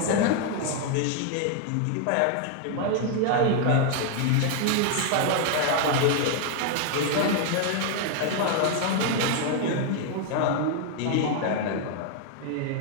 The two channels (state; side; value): different; both; correlation 0.00